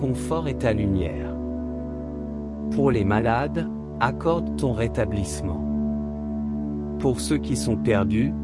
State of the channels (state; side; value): identical; both; correlation 1.00